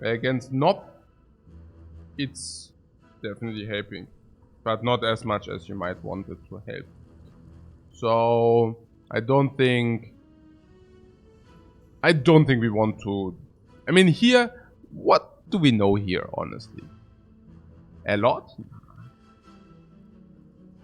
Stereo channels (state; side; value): identical; both; correlation 1.00